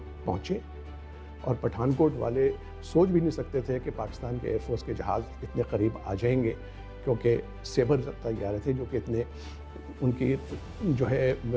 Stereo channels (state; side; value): identical; both; correlation 1.00